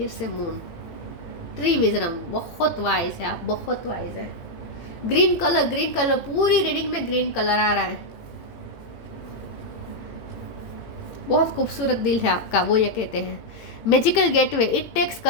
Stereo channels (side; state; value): right; late; 18 ms